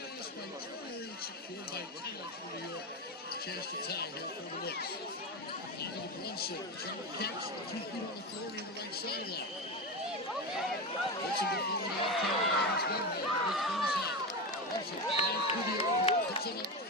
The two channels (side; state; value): both; normal; correlation 0.18